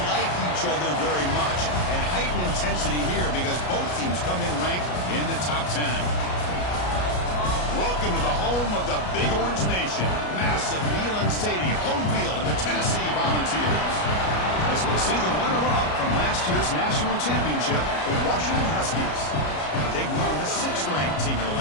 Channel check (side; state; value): right; late; 33 ms